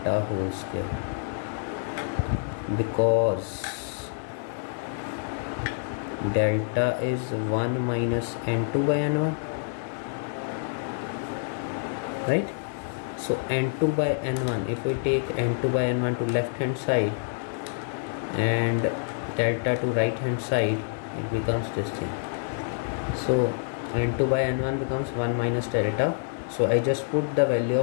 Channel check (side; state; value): right; silent; digital silence